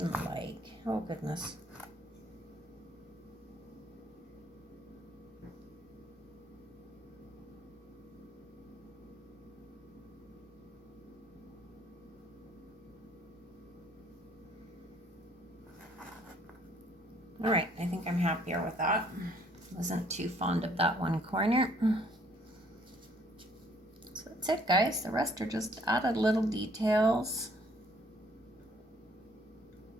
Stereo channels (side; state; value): both; normal; correlation 0.63